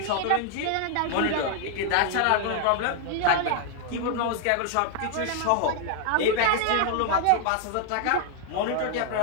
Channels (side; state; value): both; different; correlation 0.00